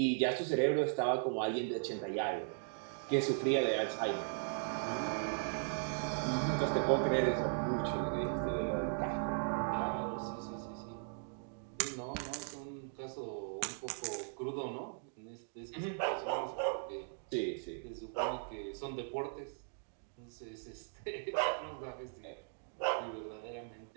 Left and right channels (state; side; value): silent; left; digital silence